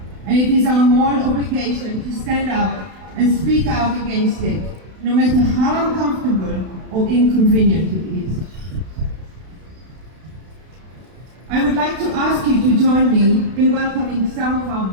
And it is our moral obligation to stand up and speak out against it, no matter how uncomfortable or inconvenient it is. I would like to ask you to join me in welcoming some of our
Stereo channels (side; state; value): left; late; 32 ms